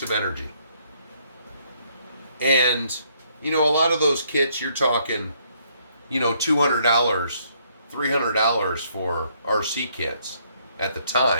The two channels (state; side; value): inverted; both; correlation -0.69